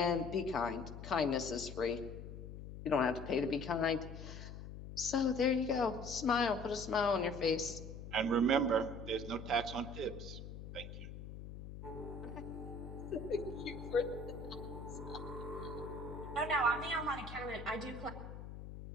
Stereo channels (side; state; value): left; noise; hum, 10 dB below the sound